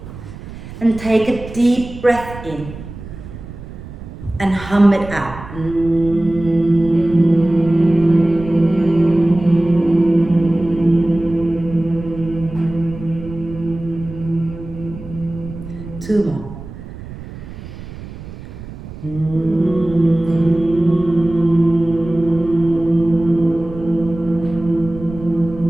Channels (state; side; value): noise; right; rumble, 13 dB below the sound